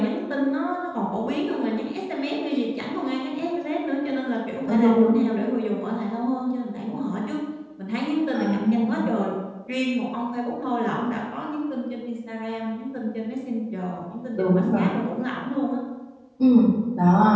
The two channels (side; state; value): both; identical; correlation 1.00